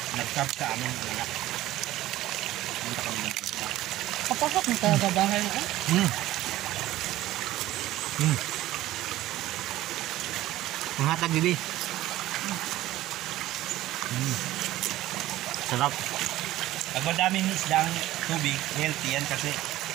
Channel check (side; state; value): left; quieter; 15.5 dB